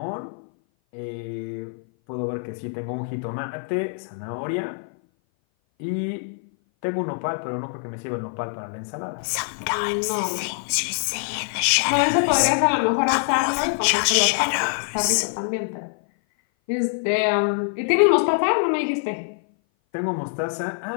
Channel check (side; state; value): right; silent; 57 dB below the other